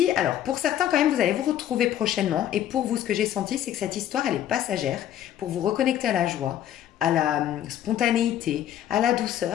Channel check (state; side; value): quieter; right; 11.3 dB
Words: alors pour certains quand même, vous allez vous retrouver prochainement. Et pour vous, ce que j'ai senti, c'est que cette histoire, elle est passagère. Pour vous reconnecter à la joie, à la spontanéité, à la